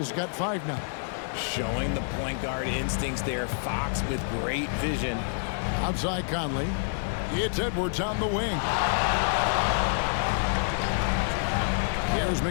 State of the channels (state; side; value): silent; right; digital silence